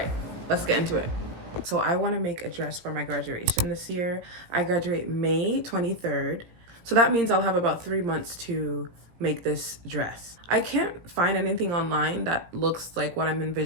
let's get into it. So I want to make a dress for my graduation this year. I graduate May 23rd. So that means I'll have about 3 months to make this dress. I can't find anything online that looks like what I'm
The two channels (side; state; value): left; late; 17 ms